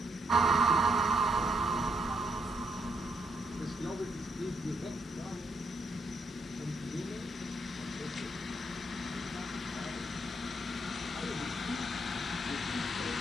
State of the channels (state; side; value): normal; both; correlation 0.75